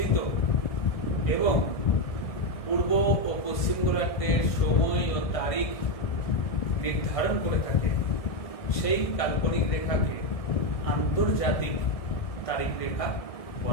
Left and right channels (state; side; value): late; right; 1.7 ms